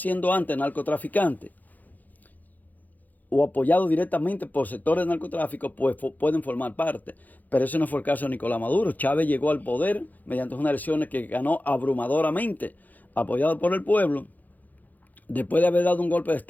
antes narcotraficantes o apoyados directamente por sectores de narcotráfico, pues pueden formar parte. Pero ese no fue el caso de Nicolás Maduro. Chávez llegó al poder mediante unas elecciones que ganó abrumadoramente, apoyado por el pueblo. Después de haber dado un golpe de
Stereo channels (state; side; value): late; right; 0.082 ms